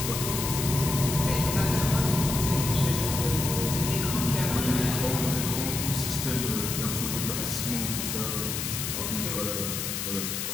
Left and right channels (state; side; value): noise; left; hiss, 3 dB below the sound